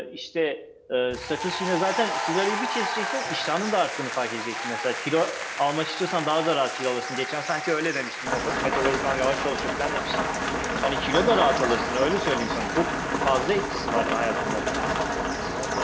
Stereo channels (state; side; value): identical; both; correlation 1.00